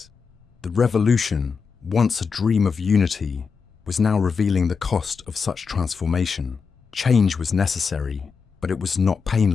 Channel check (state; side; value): quieter; right; 5.4 dB